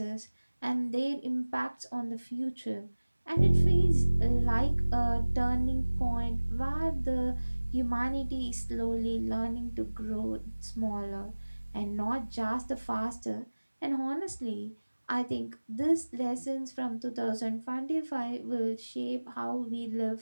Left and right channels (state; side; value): inverted; both; correlation -1.00